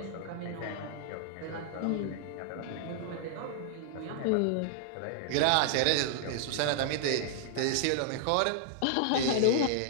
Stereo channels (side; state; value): both; different; correlation -0.01